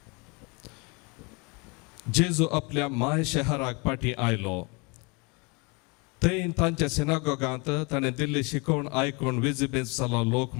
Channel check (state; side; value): quieter; right; 29.9 dB